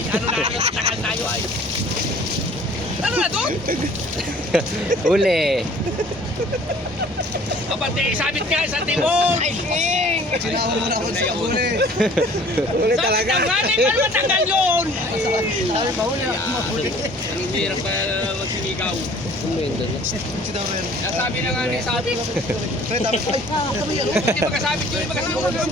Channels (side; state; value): both; normal; correlation 0.51